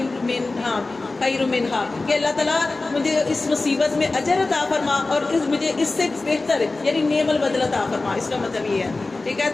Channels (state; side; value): quieter; right; 3.4 dB